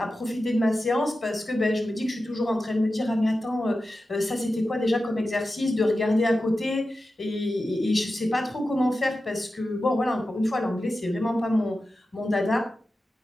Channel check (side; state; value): both; normal; correlation 0.93